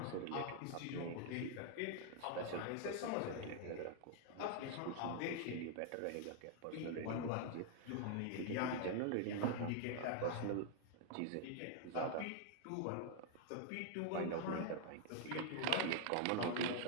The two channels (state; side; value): different; both; correlation 0.00